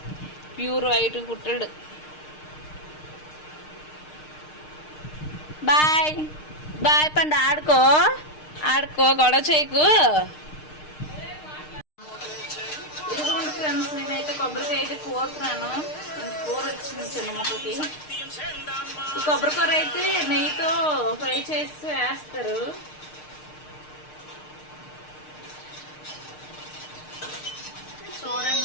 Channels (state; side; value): late; right; 6.6 ms